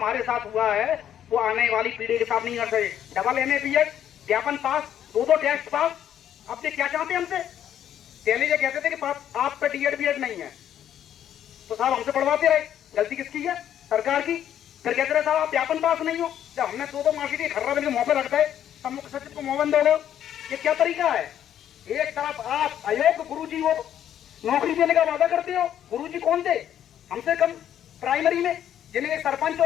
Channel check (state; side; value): quieter; right; 10.4 dB